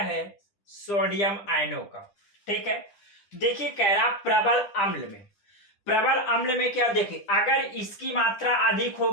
सोडियम आयनों का, ठीक है। देखिए कह रहा प्रबल अम्ल में क्या, देखिए अगर इसकी मात्रा अधिक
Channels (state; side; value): late; right; 10 ms